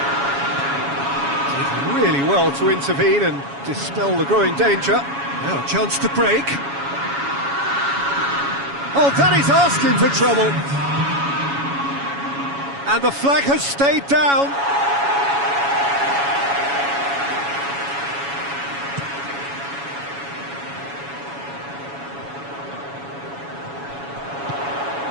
Did really well to intervene and dispel the growing danger. Now a chance to break. Oh, that is asking for trouble. And the flag has stayed down.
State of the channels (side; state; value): left; late; 7.2 ms